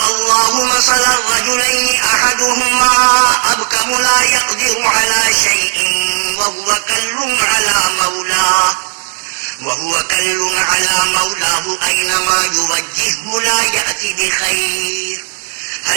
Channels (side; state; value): left; silent; 59 dB below the other